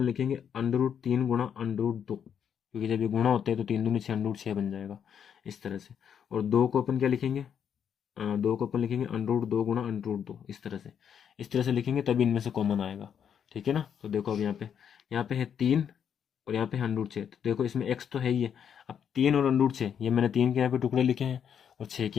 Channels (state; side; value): quieter; right; 8.2 dB